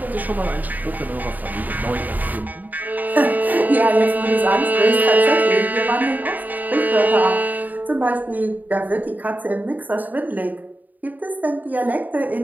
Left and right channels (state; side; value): late; left; 0.083 ms